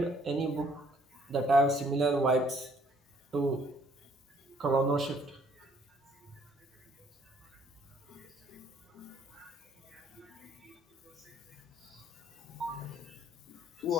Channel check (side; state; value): both; normal; correlation 0.63